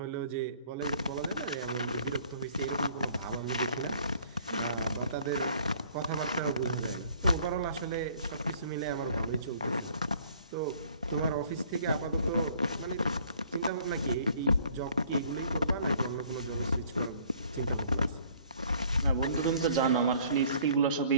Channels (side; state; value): both; inverted; correlation -0.57